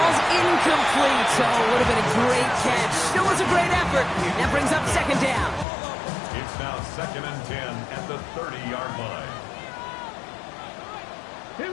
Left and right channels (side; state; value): right; drops out; at 5.7 s